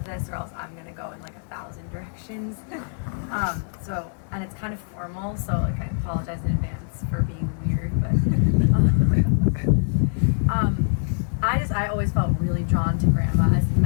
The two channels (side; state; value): right; silent; digital silence